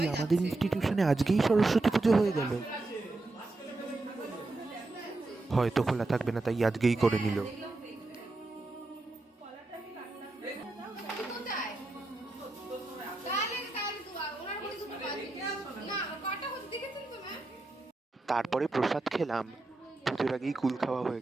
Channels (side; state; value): left; quieter; 3.1 dB